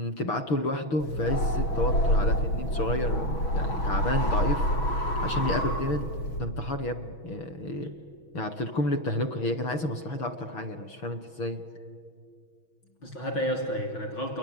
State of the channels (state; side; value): late; right; 6.2 ms